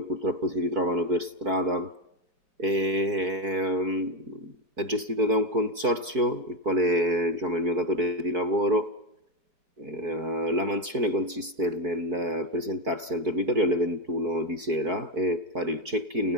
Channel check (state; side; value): late; left; 4.6 ms